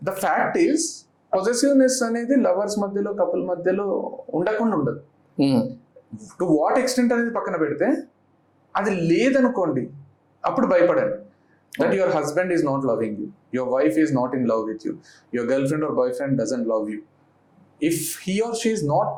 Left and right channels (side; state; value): both; identical; correlation 1.00